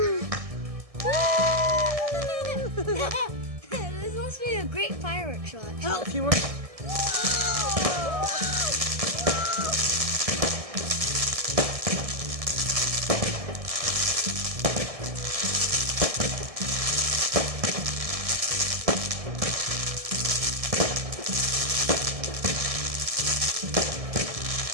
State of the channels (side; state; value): left; late; 1.6 ms